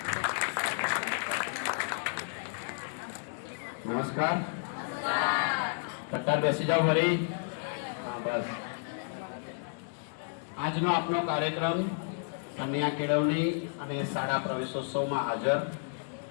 નમસ્કાર. કટ્ટાર બેસી જાઓ ફરી. બસ. આજનો આપણો કાર્યક્રમ કન્યા કેળવણી અને શાળા પ્રવેશોત્સવમાં હાજર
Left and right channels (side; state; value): right; silent; digital silence